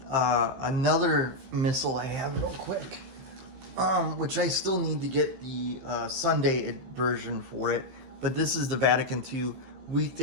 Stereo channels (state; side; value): late; left; 15 ms